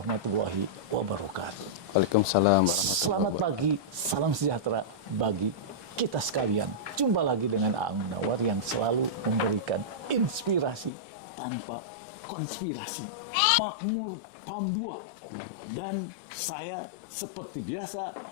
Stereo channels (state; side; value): drops out; right; at 10.9 s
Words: wabarakatuh. Waalaikumsalam. Selamat pagi, salam sejahtera bagi kita sekalian. Jumpa lagi dengan Aang Munawar yang selalu memberikan inspirasi tanpa konspirasi. Makmur PAM 2. Dan saya seperti biasa